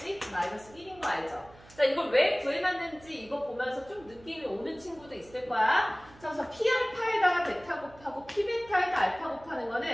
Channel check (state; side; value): noise; right; hum, 24 dB below the sound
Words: 마이너스 1인 거 알죠? 자, 이걸 왜 구해놨는지 이거 보면서 좀 느낌이 오는 친구도 있을 거야. 자, 그래서 P알파에다가 베타 곱하고 P베타에다 알파 곱하는